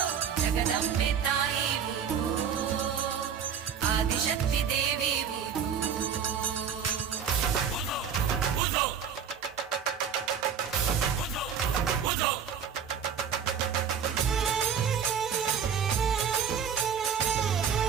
ಜಗದಂಬೆ ತಾಯಿ ಉಧೋ ಆದಿಶಕ್ತಿ ದೇವಿ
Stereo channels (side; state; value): left; quieter; 7.5 dB